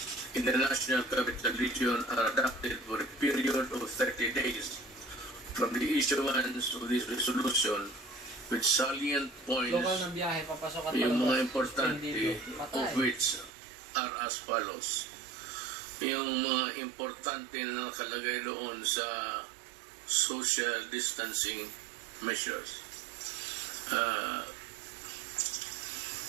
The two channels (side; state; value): left; drops out; at 13.5 s